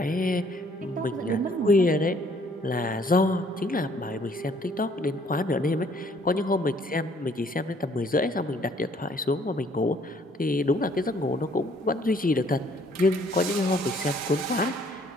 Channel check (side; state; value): both; normal; correlation 0.62